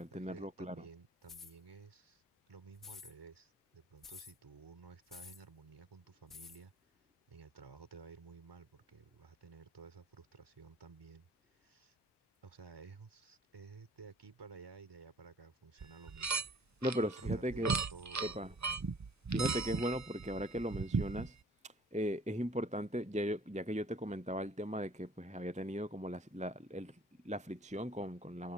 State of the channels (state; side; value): normal; both; correlation 0.55